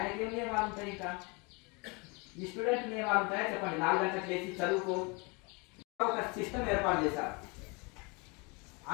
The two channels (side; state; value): right; quieter; 29.6 dB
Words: ఏం నియమాలు ఉంటాయి? ఇంకా ఈ స్టూడెంట్ నియమాలు ఉంటాయా చెప్పండి? 4 గంటలకు లేచి చదువుకో. ఒక సిస్టమ్ ఏర్పాటు చేశారు.